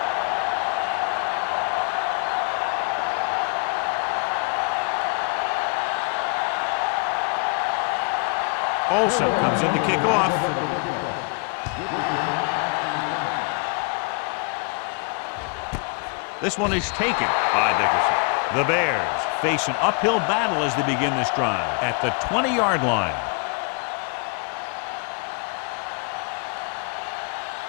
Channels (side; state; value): right; quieter; 38.1 dB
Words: Olsen comes in to kick off. This one is taken by Dickerson. The Bears face an uphill battle as they begin this drive at the 20-yard line.